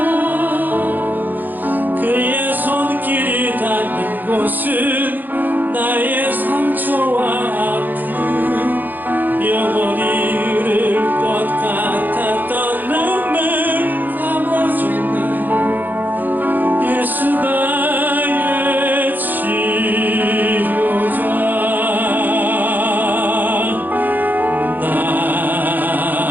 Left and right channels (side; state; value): left; late; 0.087 ms